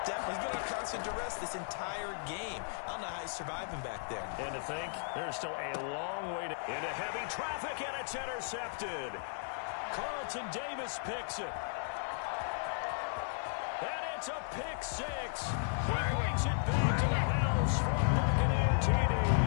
definitely he's been under constant duress this entire game. I don't know how he's surviving back there. And to think, there's still a long way into heavy traffic, and it's intercepted. Carlton Davis picks it. And it's a pick six. He brings it back to the house from Buccaneer TD.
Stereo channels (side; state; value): right; silent; 54 dB below the other